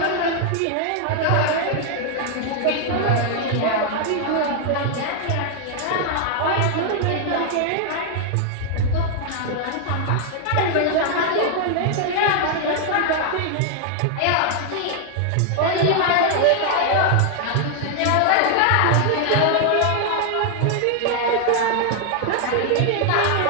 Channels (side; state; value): both; different; correlation 0.00